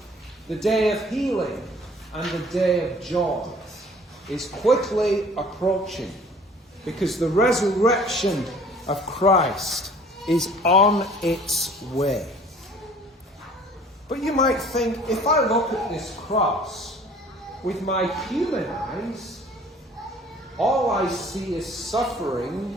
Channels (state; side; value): normal; both; correlation 0.52